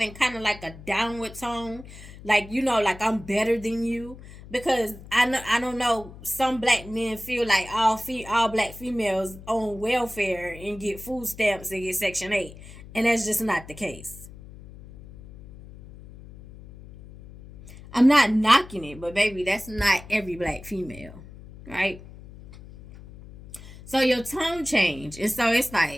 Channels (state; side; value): noise; left; hum, 17 dB below the sound